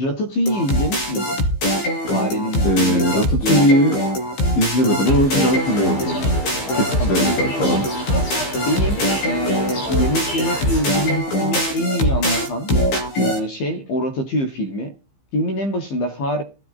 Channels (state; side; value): late; right; 15 ms